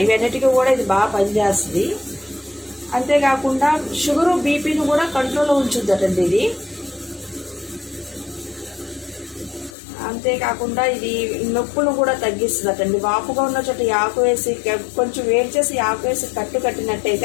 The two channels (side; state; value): right; drops out; at 9.8 s